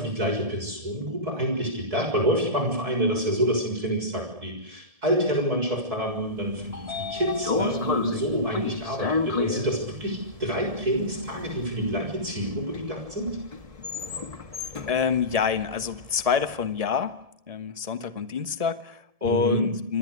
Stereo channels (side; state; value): left; late; 1.7 ms